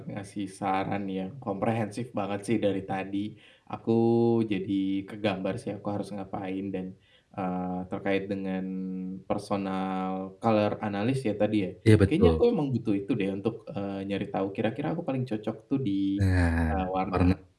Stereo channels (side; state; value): both; identical; correlation 1.00